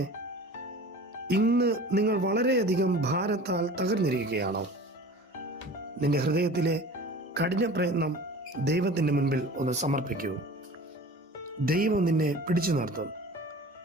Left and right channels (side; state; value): both; normal; correlation 0.41